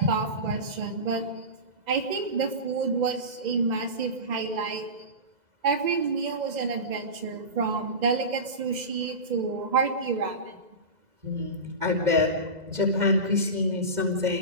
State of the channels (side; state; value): left; late; 2.0 ms